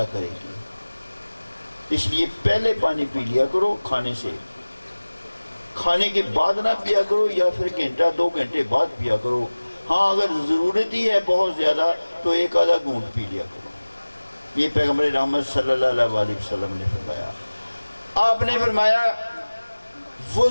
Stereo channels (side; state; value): both; inverted; correlation -1.00